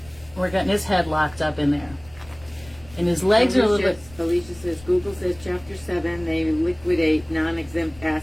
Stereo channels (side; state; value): left; noise; rumble, 22 dB below the sound